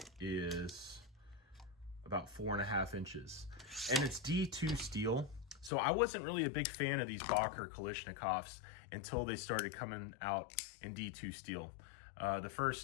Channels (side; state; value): right; drops out; at 5.7 s